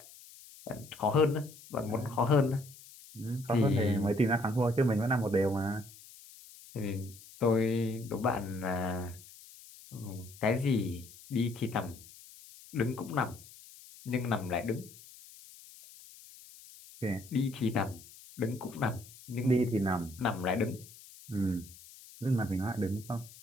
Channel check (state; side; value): noise; left; hiss, 20 dB below the sound